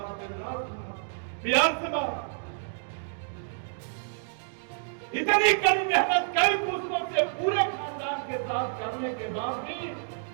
बिहार समाज, इतनी कड़ी मेहनत कई पुस्तकों से पूरे खानदान के साथ करने के बाद भी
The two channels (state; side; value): silent; left; digital silence